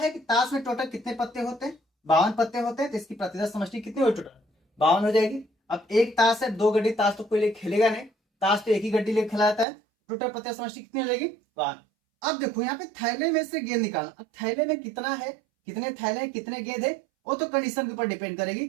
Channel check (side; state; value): left; drops out; at 9.7 s